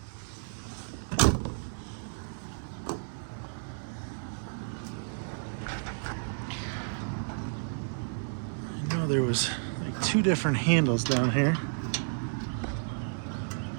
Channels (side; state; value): left; silent; 57 dB below the other